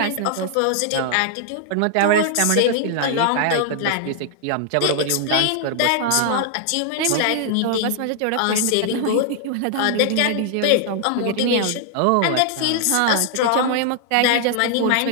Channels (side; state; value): both; different; correlation 0.00